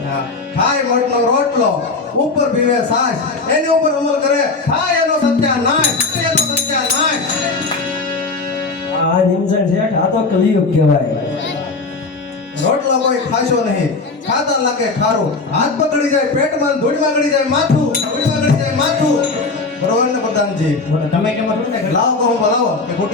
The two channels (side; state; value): right; quieter; 3.9 dB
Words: હા, ખાય મઠનો રોટલો ઉપર પીવે સાસ, એની ઉપર અમલ કરે થાય એનો સત્યાનાશ. આ નિમસન શેઠ આ તો કલિયુગ કહેવાય. રોટલો કોઈ ખાશો નહીં, ખાતા લાગે ખારું, હાથ પકડી જાય પેટમાં, ધૂળમાં ગળી જાય માથું. બરોબર ને પ્રધાનજી? તમે કેમ છો ને લાવો તો હું બોલાવો કે